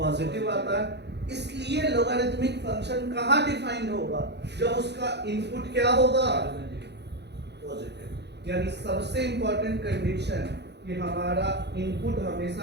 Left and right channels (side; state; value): left; late; 0.50 ms